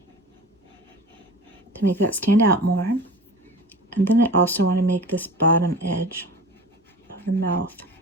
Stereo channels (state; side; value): normal; both; correlation 0.37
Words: To make that stand out more. And then I also want to make this bottom edge of the mouth